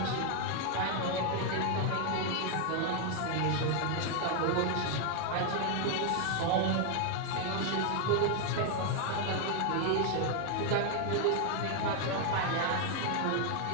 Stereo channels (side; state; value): both; different; correlation 0.01